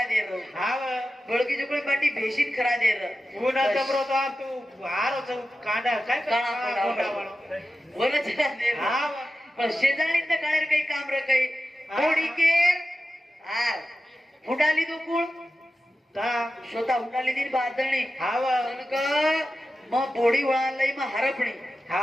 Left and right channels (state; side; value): normal; both; correlation 0.93